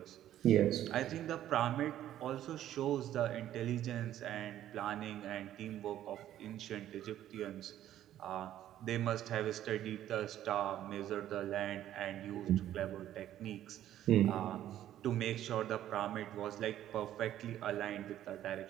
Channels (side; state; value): left; quieter; 12.2 dB